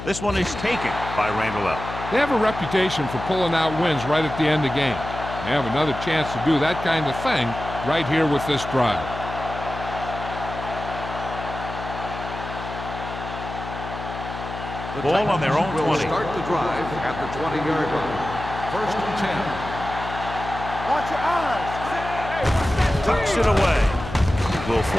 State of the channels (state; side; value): noise; left; hum, 9 dB below the sound